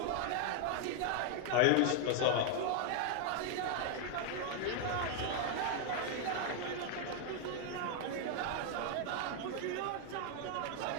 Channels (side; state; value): both; different; correlation 0.00